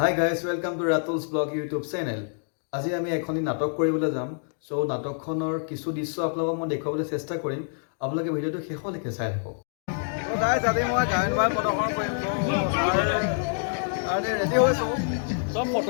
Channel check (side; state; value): right; silent; digital silence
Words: guys, welcome to Ratul's Blog YouTube channel. আজি আমি এখনি নাটক কৰিবলৈ যাম। সো নাটকখনৰ কিছু দৃশ্য আপোনালোকক মই দেখুৱাবলৈ চেষ্টা কৰিম। আপোনালোকে ভিডিওটো শেষলৈকে চাই থাকক। তো গাইজ আজি মই গায়ন বায়ন প্ৰদৰ্শন কৰিম। তো ৰেডি হৈছো। সব